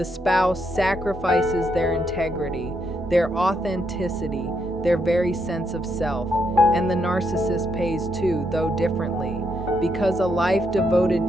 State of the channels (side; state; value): both; normal; correlation 0.78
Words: spouse sacrifices their integrity, their authenticity, their very sense of self, and the narcissist pays too, though differently. Because a life devoted